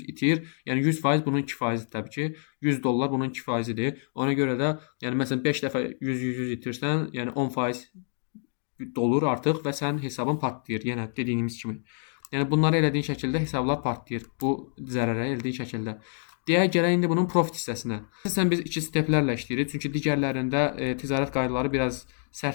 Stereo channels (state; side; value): silent; right; digital silence